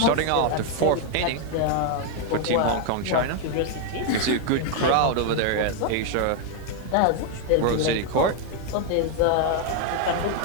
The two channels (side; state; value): both; different; correlation 0.00